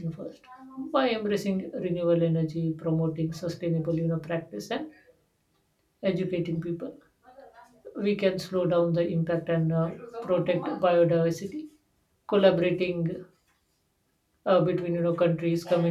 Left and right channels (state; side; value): identical; both; correlation 1.00